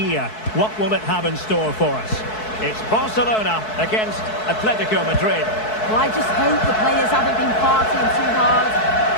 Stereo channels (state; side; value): late; right; 4.6 ms